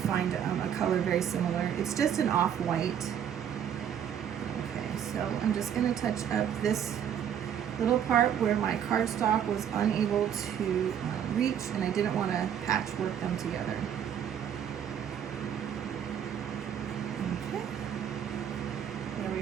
a color very similar. It's just an off-white. Okay, so I'm just going to touch up this little part where my cardstock was unable to reach, and I didn't want to patchwork them together. Okay, there we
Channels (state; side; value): quieter; left; 9.0 dB